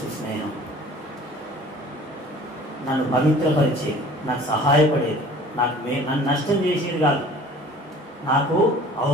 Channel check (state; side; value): normal; both; correlation 0.47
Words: స్నేహం నన్ను పవిత్రపరిచేది, నాకు సహాయపడేది, నన్ను నష్టం చేసేది కాదు, నాకు